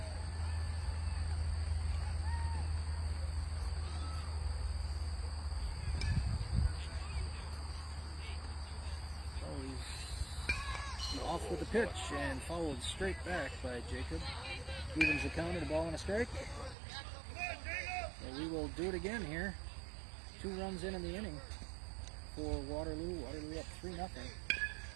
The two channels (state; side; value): drops out; left; at 16.8 s